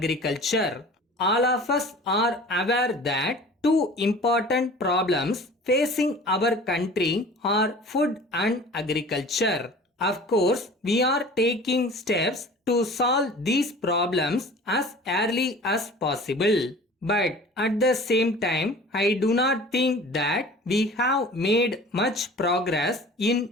All of us are aware that two important problems facing our country are food and agriculture. Of course, we are taking steps to solve these problems as early as possible. But at the same time, I do not think that we have made much progress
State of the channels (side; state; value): both; normal; correlation 0.43